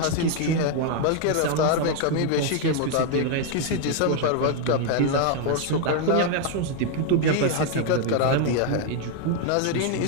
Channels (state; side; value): different; both; correlation 0.00